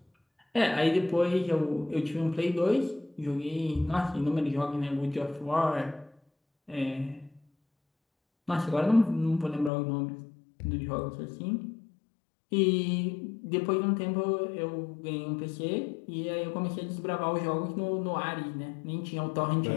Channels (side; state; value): right; drops out; at 9.7 s